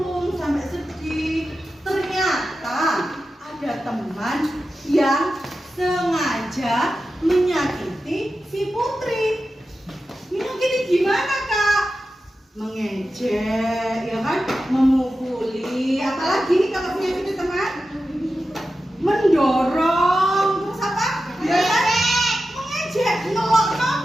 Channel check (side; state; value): both; normal; correlation 0.92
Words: sampai sedih? Ternyata ada teman yang sengaja menyakiti si Putri. Menyakiti gimana Kak? Mengejek, ya kan? Memukuli, apalagi kalau menyakiti teman? Mendorong, terus apa? Ya kan? Mengejek, ngelokno